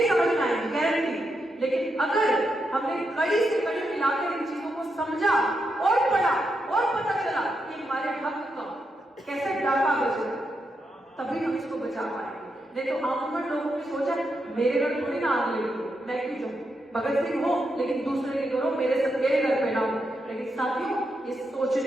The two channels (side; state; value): both; normal; correlation 0.84